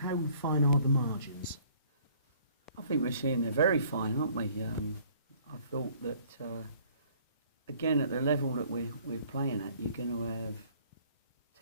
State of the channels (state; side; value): inverted; both; correlation -0.57